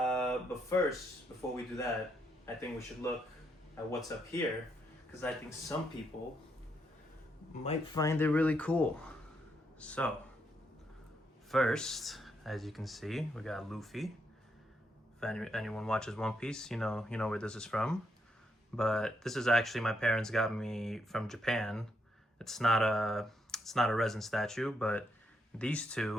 first, before we do that, I think we should look at what's up here, because I think some people might find it really cool. So, first, as you can see, we got Luffy. If anyone watches One Piece, you know where this is from. But this is actually my parents got me from Japan. It's not a resin statue, but these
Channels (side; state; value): both; normal; correlation 0.78